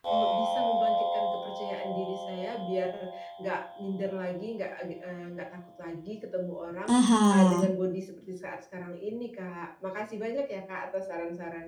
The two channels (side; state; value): both; identical; correlation 1.00